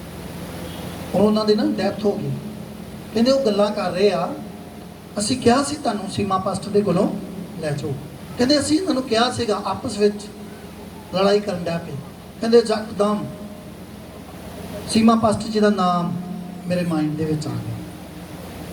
ਔਰ ਉਹਨਾਂ ਦੀ ਨਾ ਡੈਥ ਹੋ ਗਈ। ਕਹਿੰਦੇ ਉਹ ਗੱਲਾਂ ਕਰ ਰਹੇ ਆ, ਅਸੀਂ ਕਿਹਾ ਸੀ ਤੁਹਾਨੂੰ ਸੀਮਾ ਪਾਸਟਰ ਦੇ ਕੋਲੋਂ ਲੈ ਜਾਓ। ਕਹਿੰਦੇ ਅਸੀਂ ਇਹਨਾਂ ਨੂੰ ਕਿਹਾ ਸੀਗਾ, ਆਪਸ ਵਿੱਚ ਲੜਾਈ ਕਰਨ ਡਿਆ ਪਏ। ਕਹਿੰਦੇ ਯਕਦਮ ਸੀਮਾ ਪਾਸਟਰ ਜੀ ਦਾ ਨਾਮ ਮੇਰੇ ਮਾਈਂਡ ਦੇ ਵਿੱਚ ਆ ਗਿਆ।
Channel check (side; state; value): both; identical; correlation 1.00